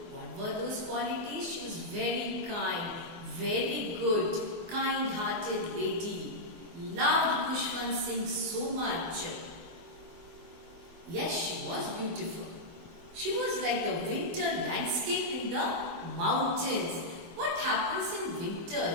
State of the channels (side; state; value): left; late; 24 ms